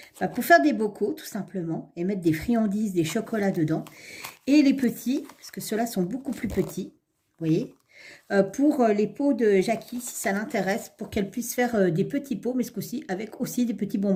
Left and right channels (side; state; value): both; identical; correlation 1.00